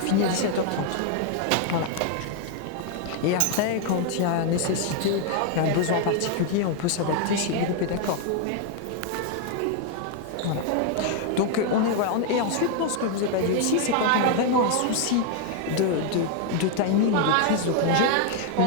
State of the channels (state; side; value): different; both; correlation 0.00